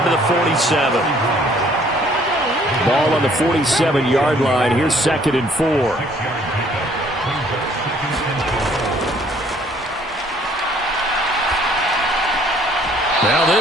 to the 47. Ball on the 47-yard line. Here's 2nd and 4. Now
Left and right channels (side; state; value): both; normal; correlation 0.60